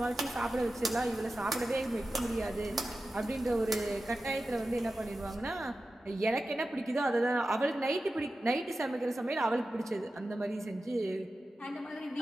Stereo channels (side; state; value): both; normal; correlation 0.93